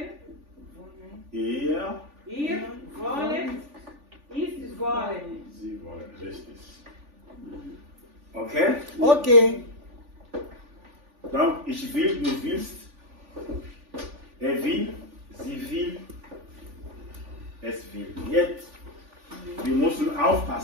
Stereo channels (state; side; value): late; left; 3.5 ms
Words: Ihr, ihr wollen, ich wollen. sie wollen. Richtig. Ok? Ok. Donc, ich will, du willst, will, sie will, es will. Jetzt, wir müssen